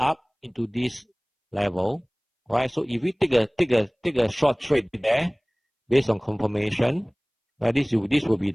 into this level, right? So if we take a short trade there based on confirmation, right? This will be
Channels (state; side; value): identical; both; correlation 1.00